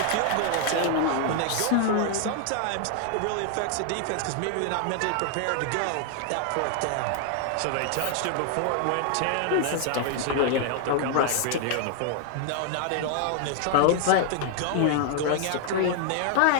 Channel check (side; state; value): both; different; correlation 0.00